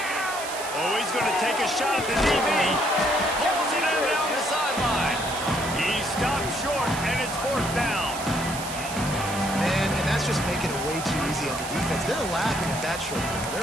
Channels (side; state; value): right; noise; hiss, 9 dB below the sound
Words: Oh, he's going to take a shot at the DB. Pulls it in down the sideline. He stopped short, and it's fourth down. Man, and that's just making it way too easy on the defense. They're laughing at that short ball.